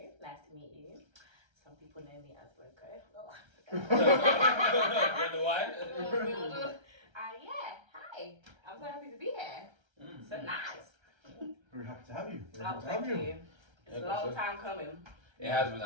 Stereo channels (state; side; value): late; left; 1.3 ms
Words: Nice to meet you. Some people know me as Loco. Wonder why? Yeah, hi. I'm so happy to be here. So nice. Very happy to have you. Thank you. It's a long time coming. It has been